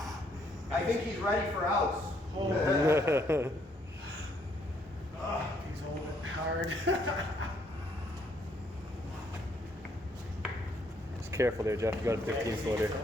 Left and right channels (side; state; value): both; normal; correlation 0.69